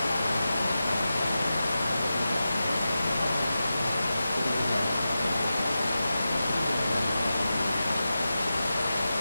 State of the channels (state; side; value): inverted; both; correlation -0.92